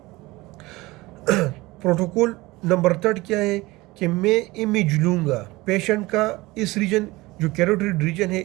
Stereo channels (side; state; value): left; quieter; 20.8 dB